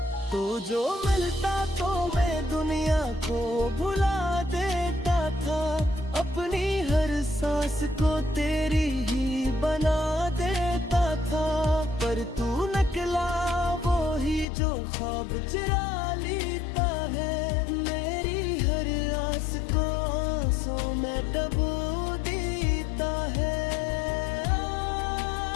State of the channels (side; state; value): right; drops out; at 14.5 s